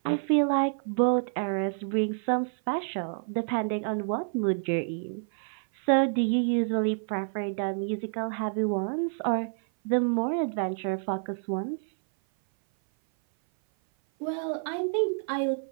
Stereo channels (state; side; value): silent; left; 56 dB below the other